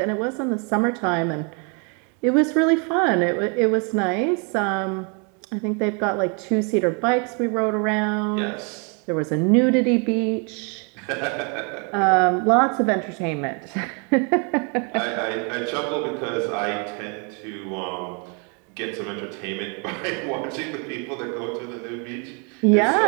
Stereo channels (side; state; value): left; quieter; 35.6 dB